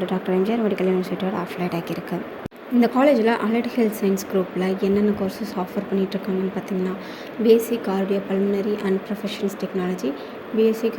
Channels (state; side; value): identical; both; correlation 1.00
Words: doctor MGR medical யூனிவர்சிட்டியோட அஃபிலியேட் ஆகியிருக்கு. இந்த காலேஜில் அலைட் ஹெல்த் சயின்ஸ் குரூப்பில் என்னென்ன கோர்சஸ் ஆஃபர் பண்ணிகிட்ருக்காங்கன்னு பார்த்தீங்கன்னா, BSc cardio pulmonary and professionals technology, BSc